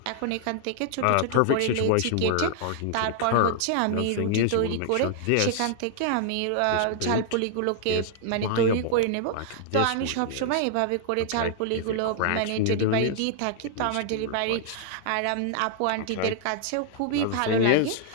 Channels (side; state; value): both; different; correlation 0.00